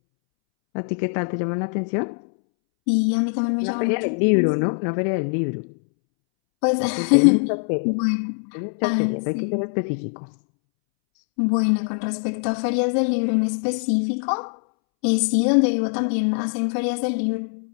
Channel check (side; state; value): right; silent; 64 dB below the other